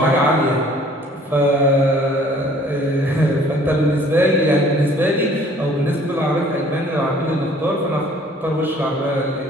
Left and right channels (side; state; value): both; normal; correlation 0.55